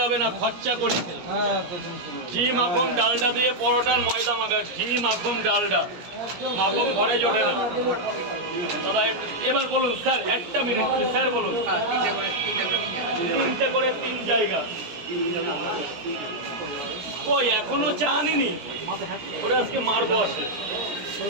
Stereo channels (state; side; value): late; left; 17 ms